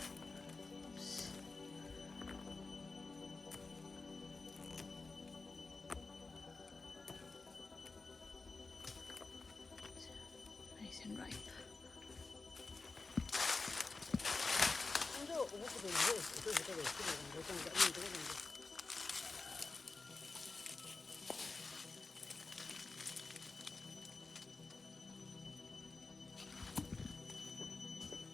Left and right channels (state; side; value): quieter; right; 3.9 dB